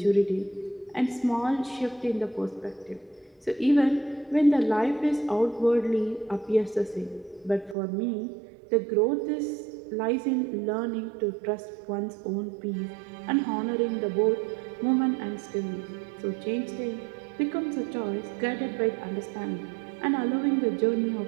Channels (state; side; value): drops out; left; at 7.8 s